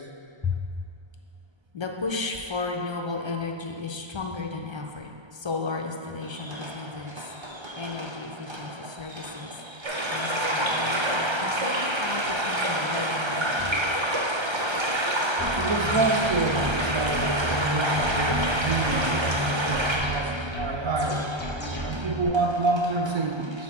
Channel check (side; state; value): left; late; 1.3 ms